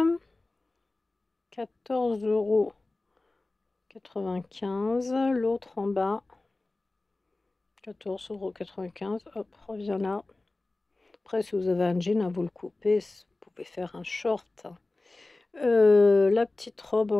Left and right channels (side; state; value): right; quieter; 3.1 dB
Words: 14,95 €. L'autre en bas. 14,95 €. Hop, reviens là. Après, si vous avez un jean, à vous le couper, vous pouvez faire un short. La petite robe